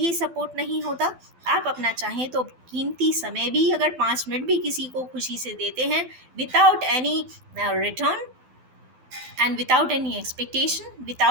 सपोर्ट नहीं होता, आप अपना चाहें तो कीमती समय भी अगर 5 मिनट भी किसी को खुशी से देते हैं without any return and without any expectation,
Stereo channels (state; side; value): late; left; 12 ms